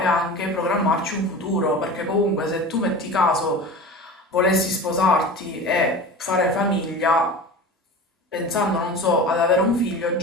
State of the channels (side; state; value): both; normal; correlation 0.33